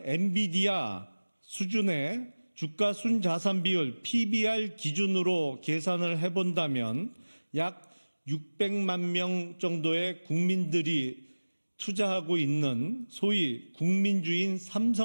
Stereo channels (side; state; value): both; inverted; correlation -1.00